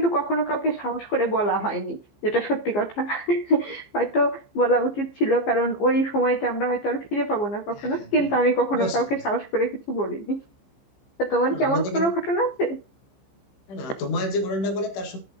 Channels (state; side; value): late; right; 15 ms